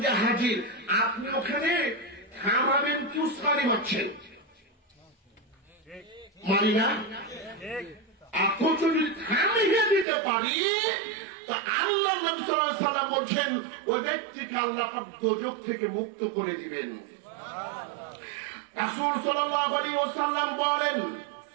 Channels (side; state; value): left; drops out; at 10.1 s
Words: যে হাজির, আপনি ওখানে থামাবেন কি উস্কানি মারছেন? মানি না? এখন যদি থামিয়ে দিতে পারি, তা আল্লাহ নবী সাল্লাল্লাহু আলাইহি ওয়াসাল্লাম বলছেন, ওই ব্যক্তিকে আল্লাহ পাক দোজখ থেকে মুক্ত করে দিবেন। রাসূল সাল্লাল্লাহু আলাইহি ওয়াসাল্লাম বলেন,